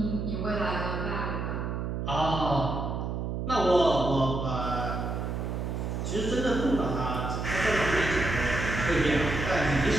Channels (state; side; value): noise; right; hum, 3 dB below the sound